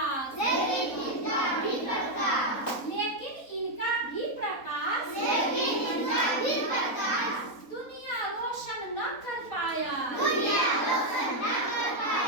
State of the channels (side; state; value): right; late; 3.9 ms